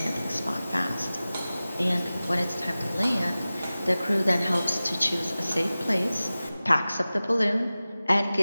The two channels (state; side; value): inverted; both; correlation -0.97